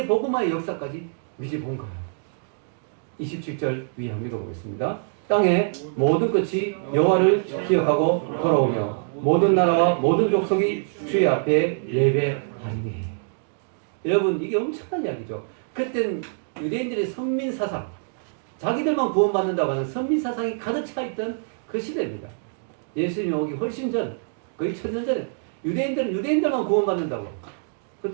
복음화의 역사까지 미리 본 거예요. 27절 위에 한번 읽어보겠습니다. 땅의 모든 끝이 여호와를 기억하고 돌아오며 모든 나라와 모든 족속이 주의 앞에 예배하리니. 여러분, 이게 엄청난 이야기죠. 그땐 유대인들의 선민사상, 자기들만 구원받는다고 하는 선민사상이 가득 차있던 그 시대입니다. 예수님이 오기 훨씬 전, 거의 1000년 전에 유대인들은 유대인들만 구원받는다고.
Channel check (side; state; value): left; silent; digital silence